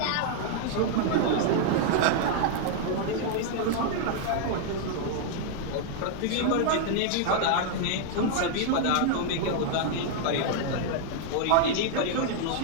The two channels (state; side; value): different; both; correlation 0.00